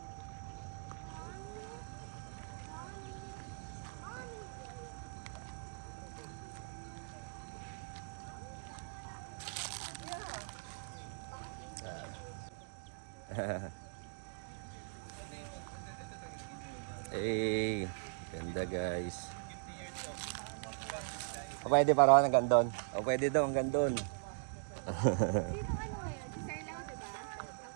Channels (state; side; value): silent; left; digital silence